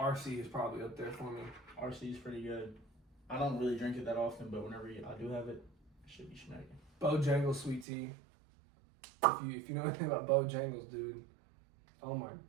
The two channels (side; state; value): left; drops out; at 7.9 s